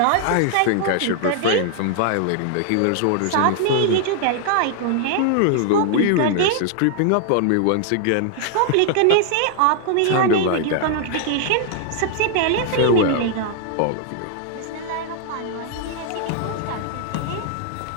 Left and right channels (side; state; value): both; different; correlation 0.00